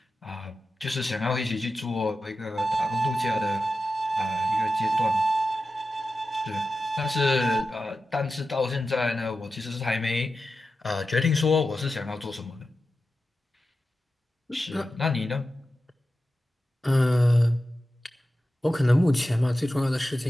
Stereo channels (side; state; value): both; normal; correlation 0.92